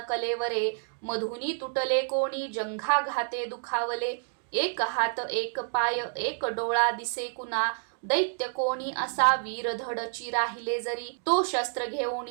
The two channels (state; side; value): silent; left; digital silence